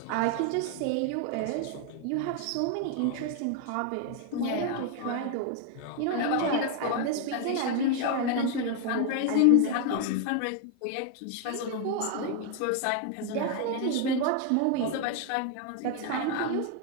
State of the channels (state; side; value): different; both; correlation 0.00